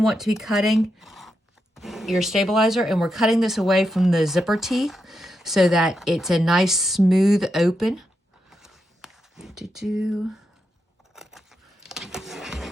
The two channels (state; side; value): normal; both; correlation 0.85